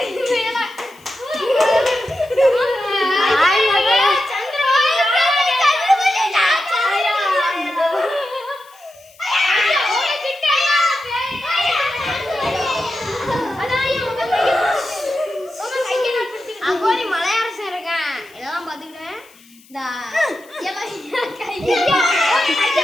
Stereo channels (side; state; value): left; noise; hiss, 27 dB below the sound